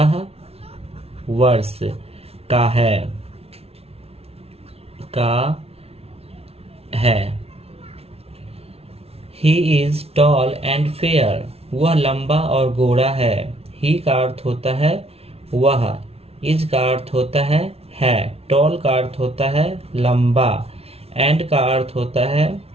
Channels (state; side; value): late; left; 0.30 ms